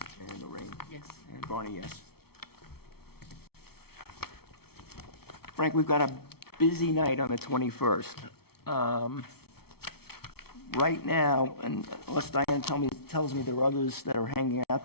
and Lorraine. Yes. And Barney, yes. Frank, we've got a busy night on the 21st. Right now, and unless Diane tells me there are others that are hanging out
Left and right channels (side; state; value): right; late; 0.95 ms